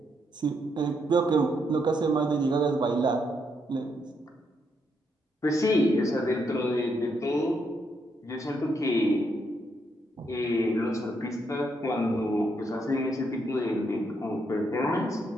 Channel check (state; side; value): normal; both; correlation 0.77